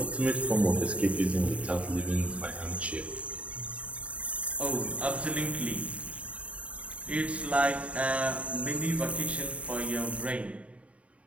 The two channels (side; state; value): left; late; 0.065 ms